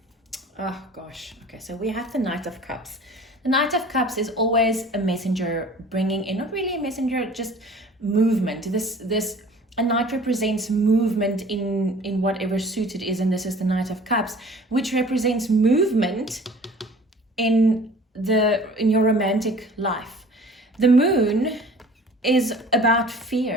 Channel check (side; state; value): both; normal; correlation 0.47